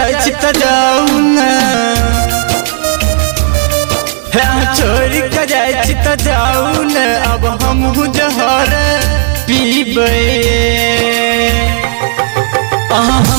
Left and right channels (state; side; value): silent; left; digital silence